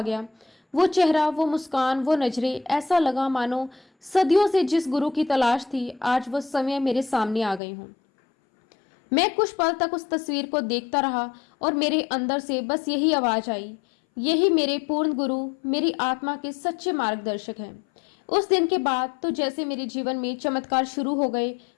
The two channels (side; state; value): right; drops out; at 7.6 s